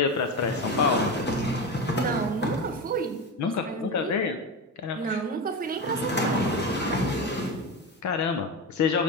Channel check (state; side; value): normal; both; correlation 0.19